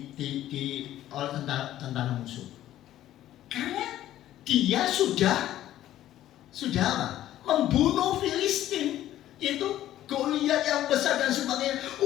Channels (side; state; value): right; quieter; 13.1 dB